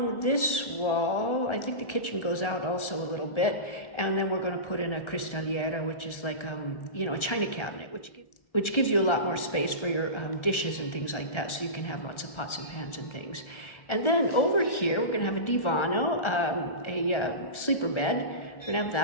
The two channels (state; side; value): late; right; 1.4 ms